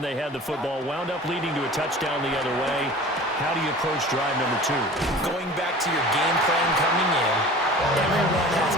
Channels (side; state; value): both; normal; correlation 0.41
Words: they had the football, wound up leading to a touchdown the other way. How do you approach drive number 2? Going back to your game plan coming in, everyone has